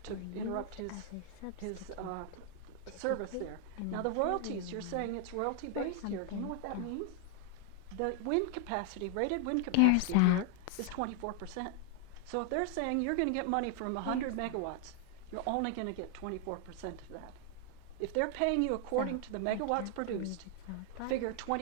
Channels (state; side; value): different; both; correlation 0.00